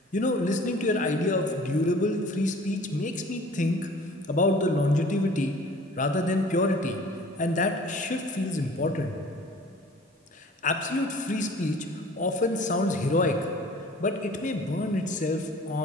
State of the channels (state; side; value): normal; both; correlation 0.48